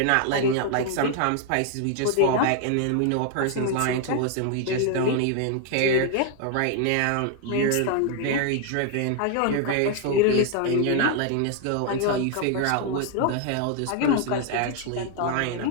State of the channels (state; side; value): different; both; correlation 0.00